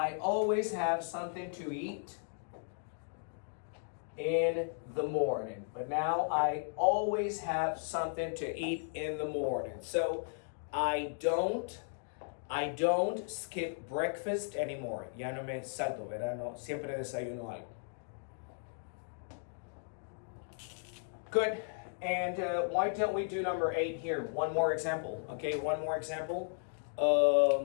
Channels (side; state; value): right; silent; digital silence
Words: always have something to eat in the morning. But now I always have something to eat in the morning. So I don't skip breakfast anymore. Ya no me salto, ¿verdad? No, siempre desayuno algo. Good. And why don't we do number 8 here? One more example. Okay, one more example.